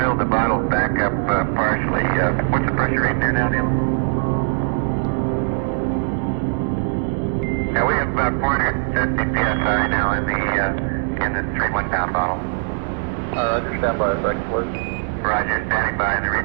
the bottles back up partially. What's the pressure reading there now, Neil? Now we have about 450 psi now in the 3 1-pound bottle. Roger, stand by a second, please. Roger, standing by. The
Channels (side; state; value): left; silent; digital silence